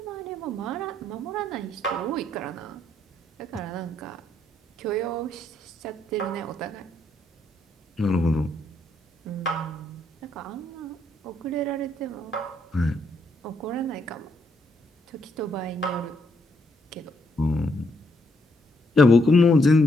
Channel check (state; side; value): normal; both; correlation 0.74